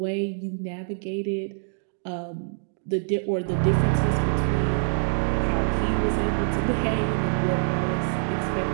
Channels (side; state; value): left; silent; digital silence